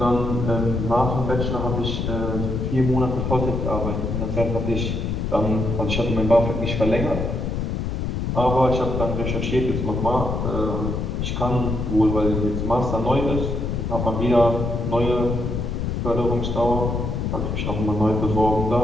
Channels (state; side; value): noise; left; rumble, 2 dB below the sound